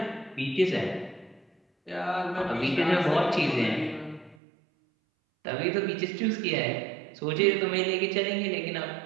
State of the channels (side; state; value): left; drops out; at 4.4 s